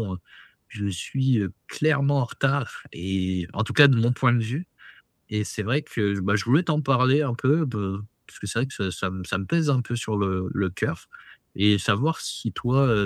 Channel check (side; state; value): both; identical; correlation 1.00